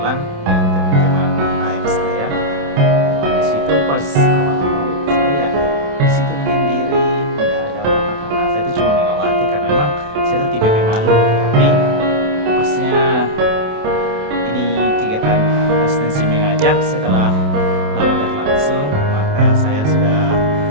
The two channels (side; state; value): left; late; 28 ms